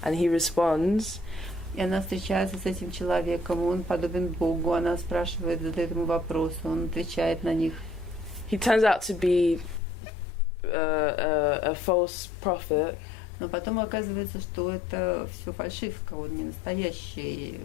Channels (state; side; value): drops out; right; at 9.8 s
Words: and he responds. И она встречается с этим человеком. Он подобен Богу. Она спрашивает, задает ему вопросы. Он отвечает на них. He turns out to be a false prophet. Но потом оказывается, что это все фальшивка. Он не настоящий.